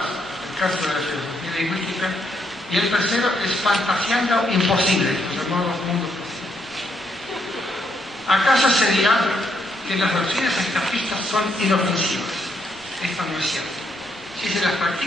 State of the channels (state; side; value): normal; both; correlation 0.75